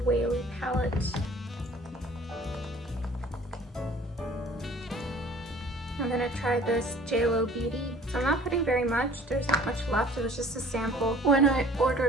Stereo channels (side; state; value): both; normal; correlation 0.51